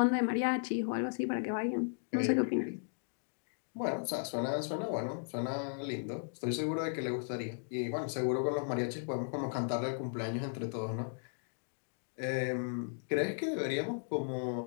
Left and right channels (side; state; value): right; silent; digital silence